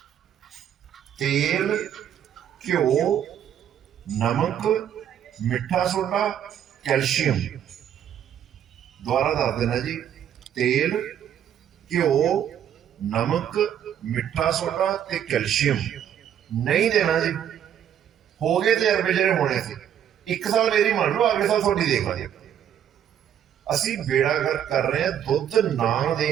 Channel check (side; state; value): left; quieter; 9.7 dB